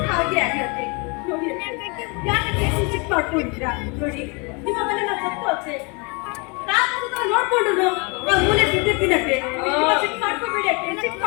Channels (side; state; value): right; quieter; 31.3 dB